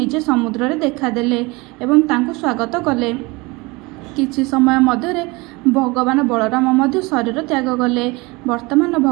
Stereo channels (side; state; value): left; quieter; 24.7 dB